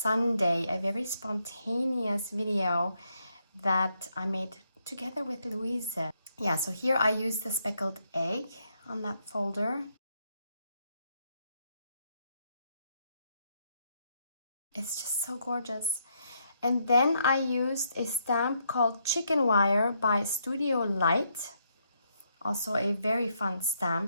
a very spontaneous video that I made together with Louise. Yeah, so here I used the speckled egg on that folder. It's just so gorgeous. And then I used a stamp called Chicken Wire by Studio Light. Also a very fun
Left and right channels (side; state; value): both; inverted; correlation -0.76